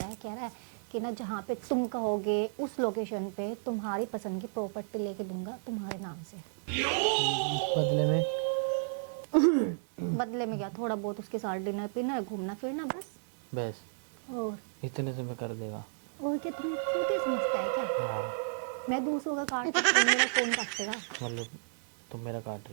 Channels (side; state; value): left; silent; 56 dB below the other